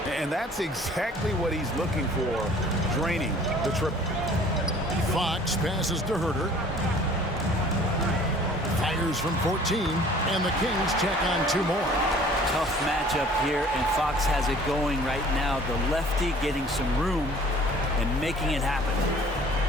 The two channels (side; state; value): both; normal; correlation 0.51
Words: And that's exactly what he's looking for, draining the triple. Fox passes to Herter. Fires from 14, and the Kings check on 2 more. Tough matchup here, and Fox has it going right now. The lefty getting some room and making it happen.